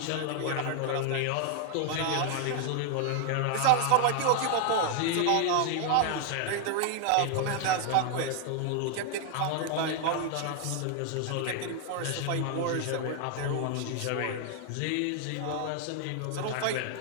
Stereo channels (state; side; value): different; both; correlation 0.00